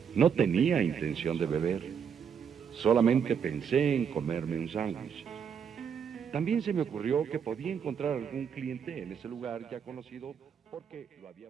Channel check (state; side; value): quieter; left; 7.3 dB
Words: No tenía intención de beber. Solamente pensé en comerme un sándwich. También se me ocurrió que podía encontrar algún cliente en ese lugar ya conocido porque lo había